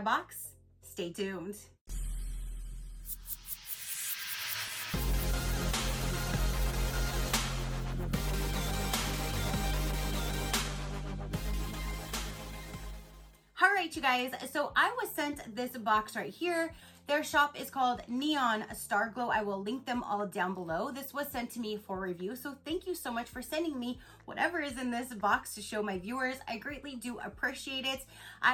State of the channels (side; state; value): both; identical; correlation 1.00